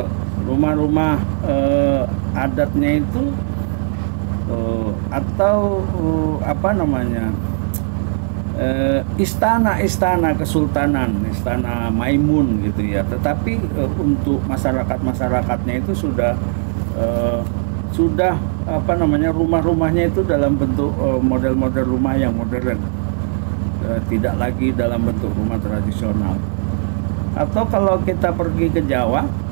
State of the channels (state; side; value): silent; left; digital silence